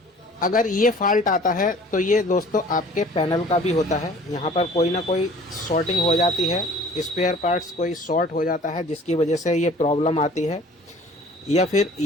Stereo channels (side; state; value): both; normal; correlation 0.49